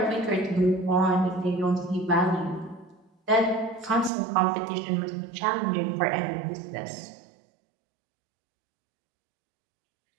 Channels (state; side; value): drops out; left; at 4.1 s